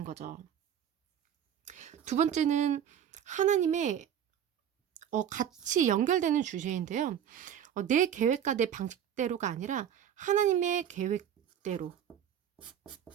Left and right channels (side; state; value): left; quieter; 9.4 dB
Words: 거죠. 두 번째는 하나님의 같이 연결되는 주제인데요. 내 계획과 내 방식대로가 아니라 하나님의 계획대로